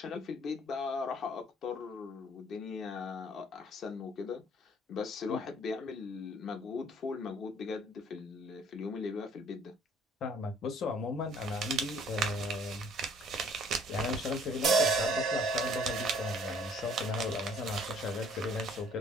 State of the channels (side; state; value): both; normal; correlation 0.58